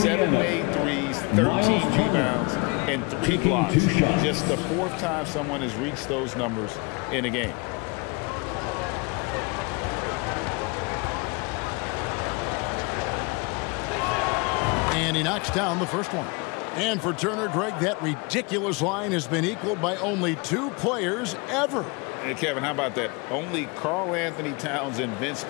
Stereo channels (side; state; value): right; quieter; 29.2 dB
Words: made threes, 13 rebounds, and 3 blocks. Just the 4th time someone has reached those numbers in a game. And he knocks down the first one. And for Turner, Greg, that ridiculous line has been equaled by only 2 players ever. Hey, Kevin, how about that? Only Karl Anthony Towns and Vince